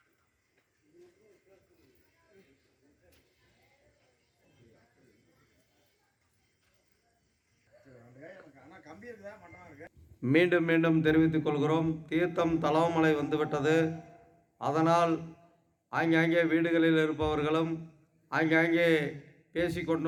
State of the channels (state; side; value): identical; both; correlation 1.00